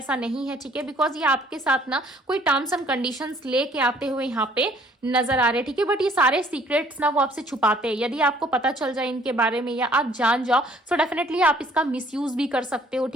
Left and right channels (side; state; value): both; normal; correlation 0.59